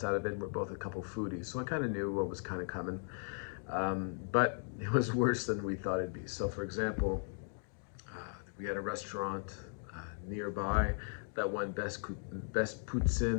out of it. We're both a couple foodies, so I kind of knew what was kind of coming. But it was worse than we thought it'd be. So, for example, we had a restaurant nearby that won best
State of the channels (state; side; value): silent; right; 53 dB below the other